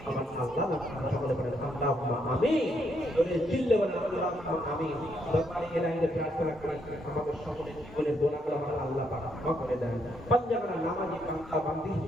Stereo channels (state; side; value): normal; both; correlation 0.75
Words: আমার আল্লাহ সকলে বলেন আল্লাহুম্মা আমিন বলে চিল্লে বলেন আল্লাহুম্মা আমিন দরবারে ইলাহিতে প্রার্থনা করি আমাদের সকলের জীবনের গুনাহগুলো আমার আল্লাহ পাক ক্ষমা করে দেন পাঞ্জাবের নামাজি বান্দা বান্দি